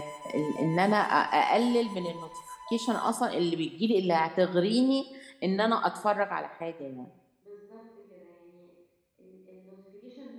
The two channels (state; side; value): identical; both; correlation 1.00